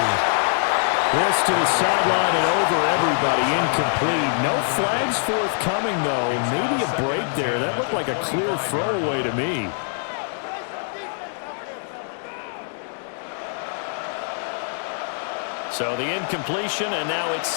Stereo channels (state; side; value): silent; right; digital silence